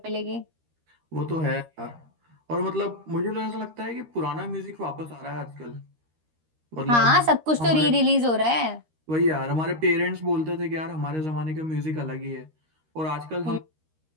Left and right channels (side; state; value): left; late; 13 ms